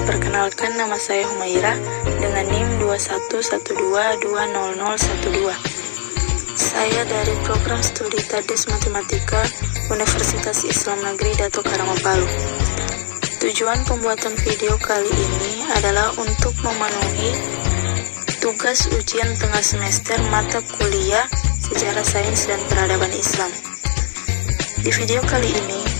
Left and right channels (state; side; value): silent; right; 66 dB below the other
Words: perkenalkan nama saya Humaira dengan NIM 2112200012. Saya dari program studi Tadus Matematika Universitas Islam Negeri Dato Karanggo Palu. Tujuan pembuatan video kali ini adalah untuk memenuhi tugas ujian tengah semester mata kuliah Sejarah Sains dan Peradaban Islam. Di video kali ini,